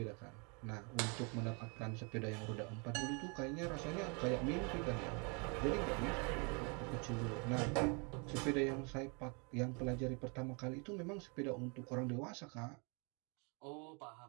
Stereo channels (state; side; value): quieter; left; 33.8 dB